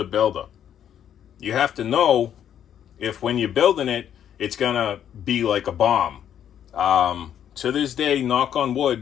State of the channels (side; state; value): right; quieter; 9.7 dB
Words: builder. You have to know if when you're building it, it's going to be like a bomb. To this day, knock on